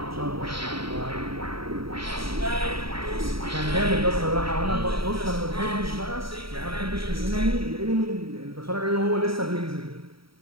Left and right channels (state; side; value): late; left; 0.75 ms